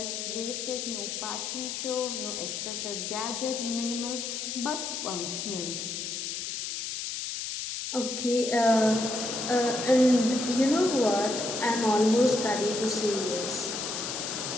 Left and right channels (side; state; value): left; noise; hiss, 4 dB below the sound